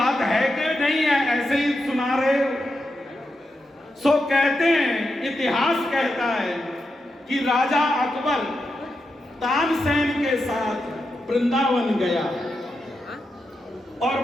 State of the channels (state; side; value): normal; both; correlation 0.87